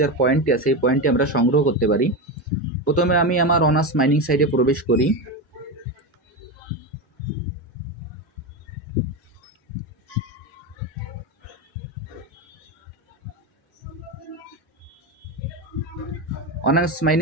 পয়েন্টটি আছে এই পয়েন্টটি আমরা সংগ্রহ করতে পারি। প্রথমে আমি আমার অনার্স মাইনিং সাইটে প্রবেশ করি। অনার্স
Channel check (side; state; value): both; normal; correlation 0.16